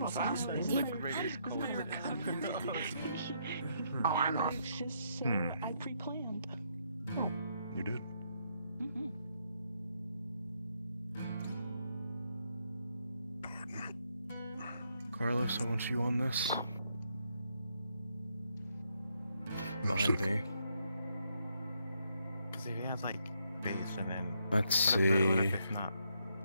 Oh, I know. I pre-planned. You did. Carlos, I want you on this. Behind me. Because if he has like base and then. Let's what see. if it's not?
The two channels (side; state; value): both; inverted; correlation -0.76